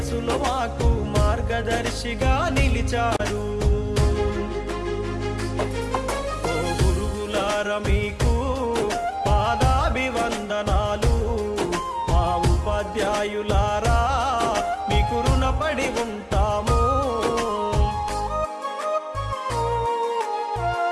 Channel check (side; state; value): both; identical; correlation 1.00